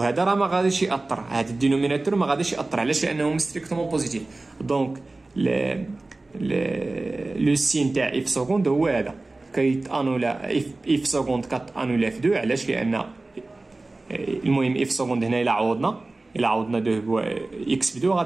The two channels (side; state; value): left; quieter; 3.1 dB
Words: راه ما غاديش ياثر، هذا الدينوميناتور ما غاديش ياثر. علاش؟ لانه ستريكتومون بوزيتيف. دونك لو سين تاع اف سكوند هو هذا كيتانولا اف سكوند كتانولا في 2. علاش؟ لان المهم اف سكوند هنا الا عوضنا الا عوضنا 2 اكس ب 2